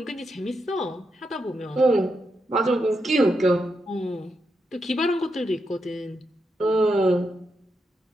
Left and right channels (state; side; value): normal; both; correlation 0.84